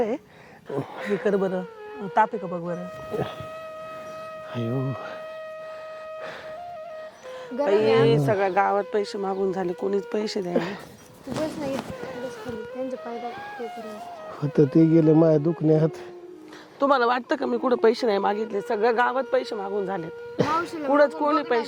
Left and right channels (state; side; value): identical; both; correlation 1.00